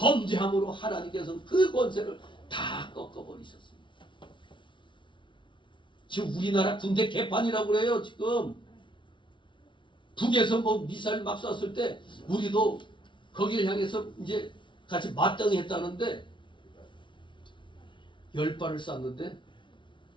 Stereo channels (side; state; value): right; late; 0.24 ms